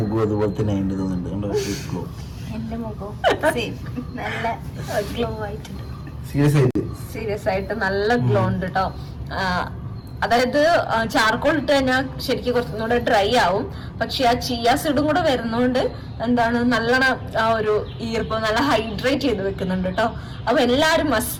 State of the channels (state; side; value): identical; both; correlation 1.00